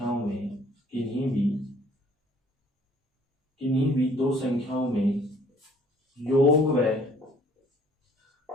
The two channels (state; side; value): normal; both; correlation 0.57